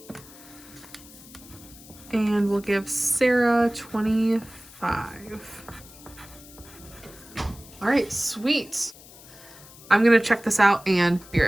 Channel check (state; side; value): noise; left; hiss, 20 dB below the sound